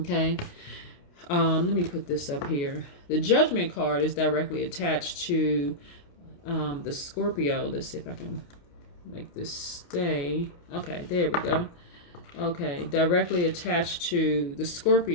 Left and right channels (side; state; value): right; late; 28 ms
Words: Let me put this up here. The Judgment card is directly attached to the Scorpio. Let's see if I can make this stay. Okay, there we go. Okay, directly attached to the